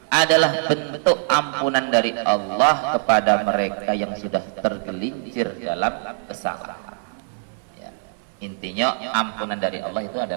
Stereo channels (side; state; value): left; silent; digital silence